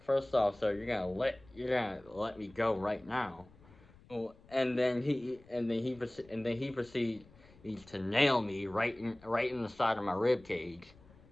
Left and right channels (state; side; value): noise; left; rumble, 25 dB below the sound